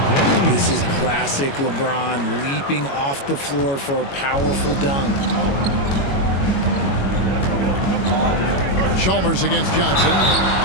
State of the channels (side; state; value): right; late; 22 ms